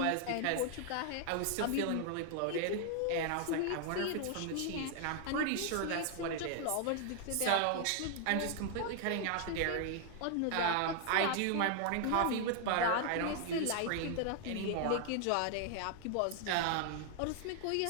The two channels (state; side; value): different; both; correlation 0.00